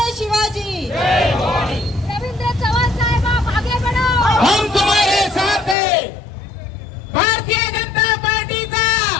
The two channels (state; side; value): drops out; right; at 5.8 s